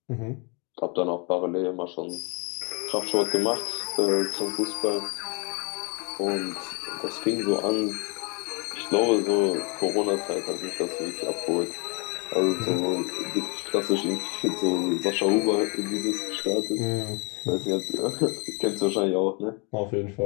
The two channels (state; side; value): quieter; right; 32.3 dB